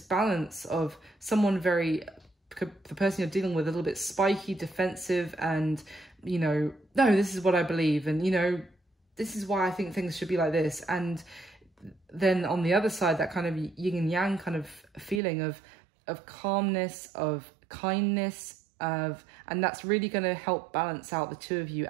balance of someone the person you're dealing with, a little bit spiky, defensive, and, you know, no, this is what I believe, and, you know, this is why I think things should be like this. And then on the other side, that kind of yin and yang kind of feeling of calmness, of kindness, and that's really going to help balance out the two of you,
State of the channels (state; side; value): drops out; left; at 15.2 s